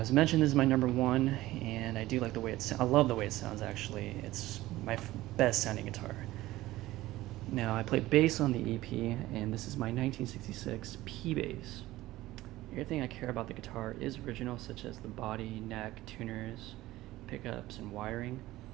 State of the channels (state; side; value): quieter; left; 16.9 dB